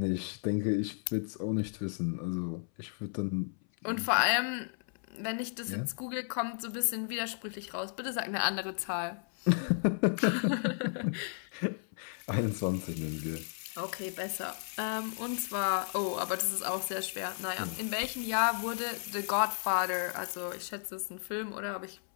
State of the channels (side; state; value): right; silent; 55 dB below the other